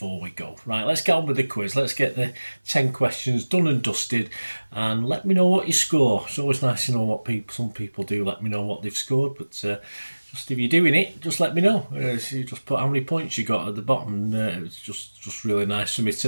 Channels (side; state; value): both; inverted; correlation -1.00